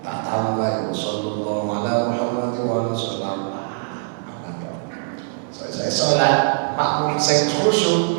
tambah ya sallallahu ala Muhammad wa sallam. Saya sholat makmum sing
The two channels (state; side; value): silent; left; 64 dB below the other